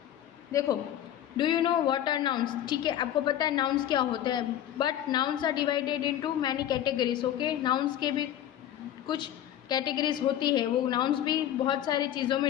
देखो, do you know what are nouns? ठीक है, आपको पता है nouns क्या होते हैं, but nouns are divided into many categories. Okay. Nouns के भी कुछ कैटेगरीज होती है, वो नाउन्स भी बहुत सारी चीज़ों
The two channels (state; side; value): quieter; right; 11.4 dB